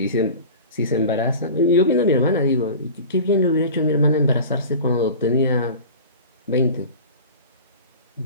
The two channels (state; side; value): inverted; both; correlation -0.36